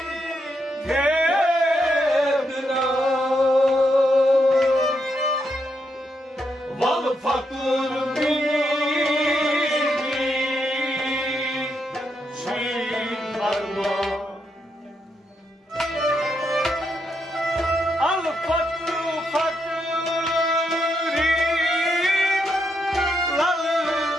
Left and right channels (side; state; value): both; normal; correlation 0.80